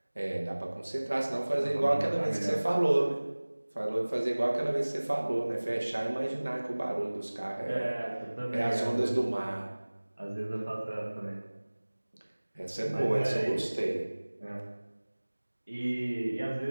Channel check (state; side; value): inverted; both; correlation -1.00